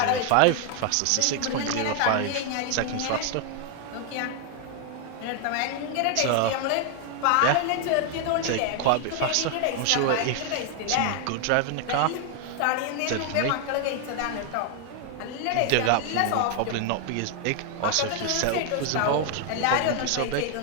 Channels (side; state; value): both; different; correlation 0.00